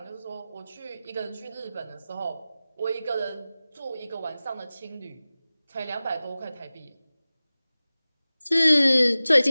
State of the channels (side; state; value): both; inverted; correlation -0.97